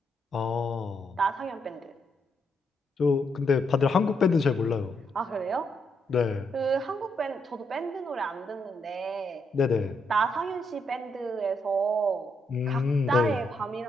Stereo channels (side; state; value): both; normal; correlation 0.78